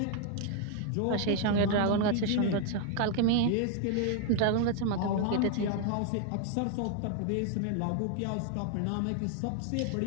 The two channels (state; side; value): different; both; correlation 0.00